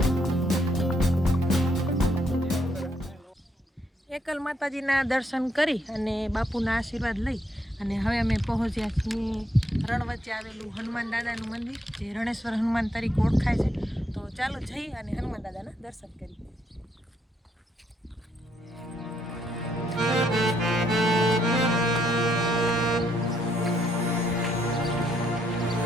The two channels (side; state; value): both; normal; correlation 0.74